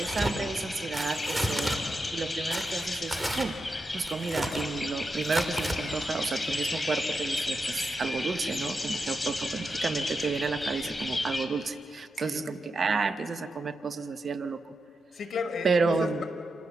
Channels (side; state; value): both; normal; correlation 0.88